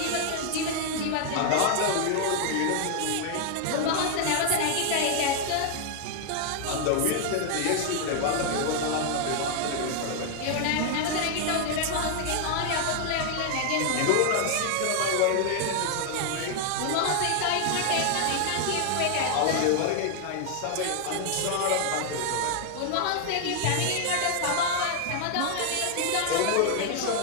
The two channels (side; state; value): both; different; correlation 0.00